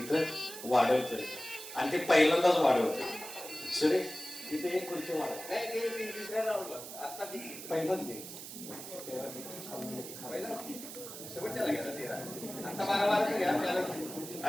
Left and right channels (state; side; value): noise; right; hiss, 11 dB below the sound